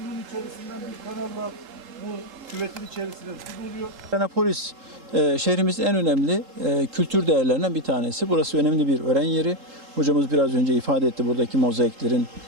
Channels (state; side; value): late; left; 3.8 ms